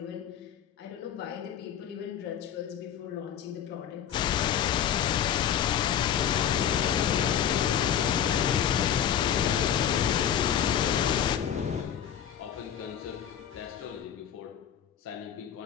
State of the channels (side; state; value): right; quieter; 9.4 dB